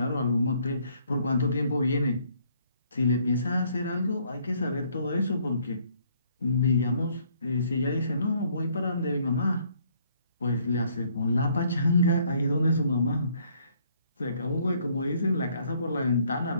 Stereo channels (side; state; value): both; inverted; correlation -0.65